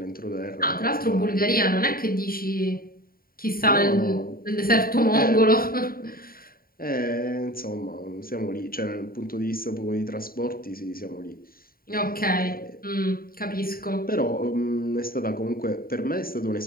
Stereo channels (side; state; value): right; late; 0.43 ms